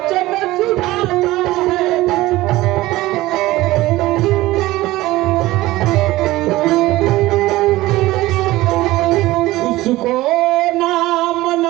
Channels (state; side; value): quieter; left; 17.9 dB